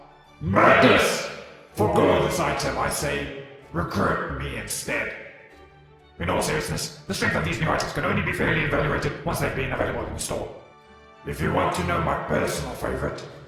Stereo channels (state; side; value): identical; both; correlation 1.00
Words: Madness! Forgo this item, I say. Recruit me instead. In all seriousness, the strength of these new items can only be fairly evaluated once they've been available in the store. If you want to know my personal favorite,